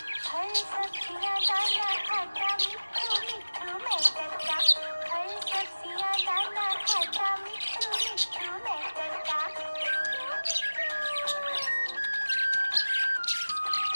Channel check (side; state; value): both; inverted; correlation -1.00